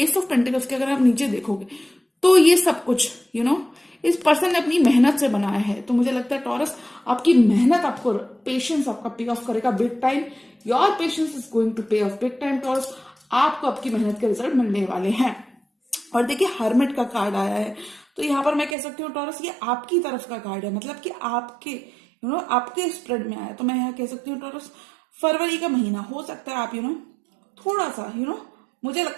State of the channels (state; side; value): drops out; left; at 18.8 s